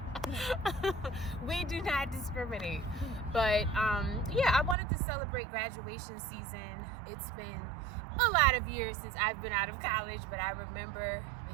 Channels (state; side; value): drops out; left; at 4.8 s